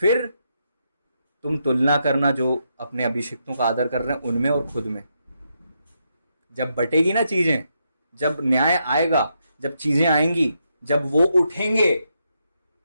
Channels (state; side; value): inverted; both; correlation -0.81